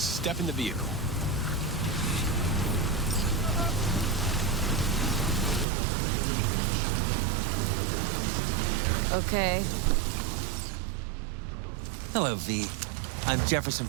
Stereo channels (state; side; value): drops out; left; at 5.7 s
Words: in the vehicle. Okay. Hello, V. I'm Jefferson